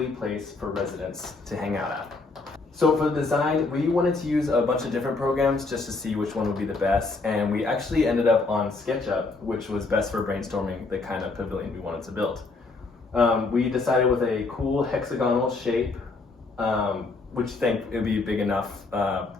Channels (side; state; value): right; quieter; 3.7 dB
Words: place for residents to hang out at. So for the design, we wanted to use a bunch of different programs just to see which one would be the best, and we actually ended up on SketchUp, which was best for brainstorming the kind of pavilion we wanted to build. We decided with a cool hexagonal shape, which I think it would be big enough